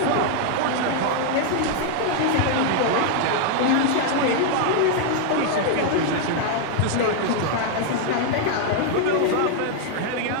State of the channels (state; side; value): different; both; correlation 0.00